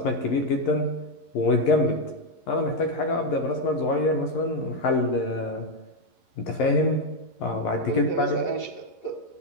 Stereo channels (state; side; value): late; right; 11 ms